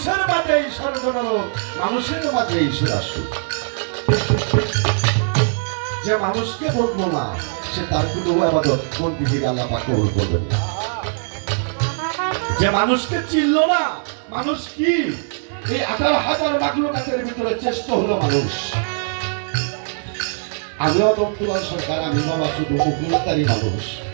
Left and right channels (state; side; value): silent; left; 60 dB below the other